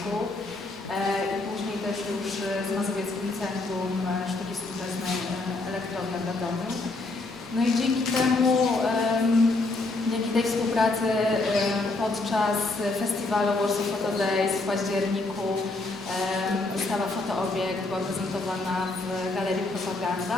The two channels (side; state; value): right; quieter; 3.2 dB